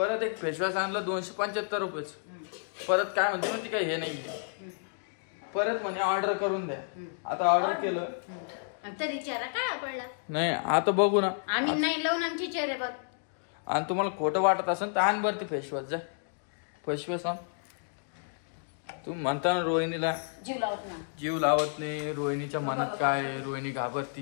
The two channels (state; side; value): silent; right; digital silence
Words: एक फेसवॉश आणलं 275 रुपयाचं. परत काय म्हणते मग ती काय हे नाहीये. परत म्हणे ऑर्डर करून द्या. आता ऑर्डर केलं तरी चेहरा काय पडला नाही. आता बघू ना आम्ही नाही लावून आमचे चेहरे बघ. आणि तुम्हाला खोटं वाटत असेल तर आण बरं ती फेसवॉश. जाय फेसवॉश आण. तुम्ही म्हणता ना रोहिणीला जीव लावत नाही. रोहिणीच्या मनात काय आहे? रोहिणी